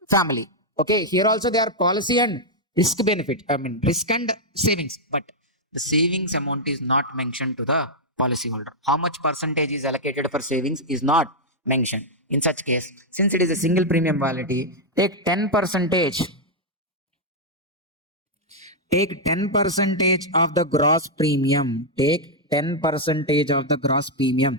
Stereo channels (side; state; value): both; normal; correlation -0.03